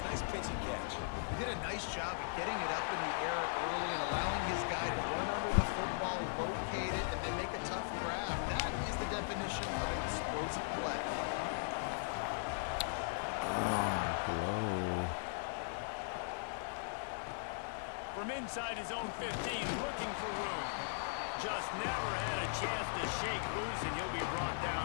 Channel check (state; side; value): silent; right; digital silence